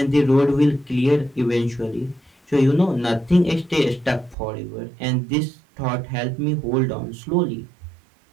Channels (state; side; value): drops out; left; at 4.4 s